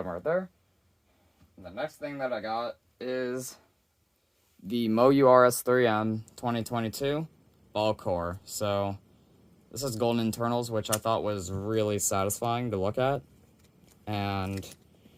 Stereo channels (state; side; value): identical; both; correlation 1.00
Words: right there. The next thing that I got is the MoU RS3M 2022 ball core. So this is golden internals, which I thought was really satisfying to look at. And